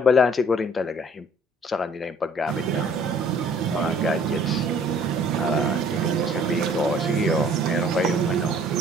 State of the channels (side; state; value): both; normal; correlation 0.56